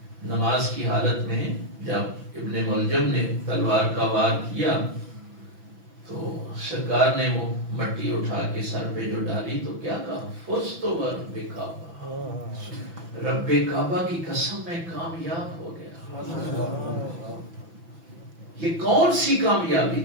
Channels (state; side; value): late; left; 6.0 ms